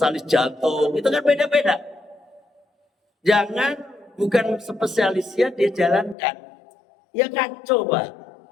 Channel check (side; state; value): right; drops out; at 6.2 s